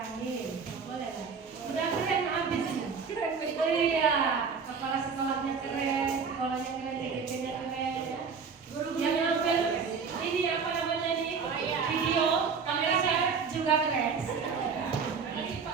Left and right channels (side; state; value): left; quieter; 5.7 dB